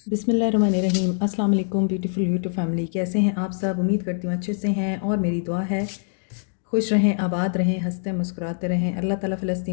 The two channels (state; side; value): silent; right; digital silence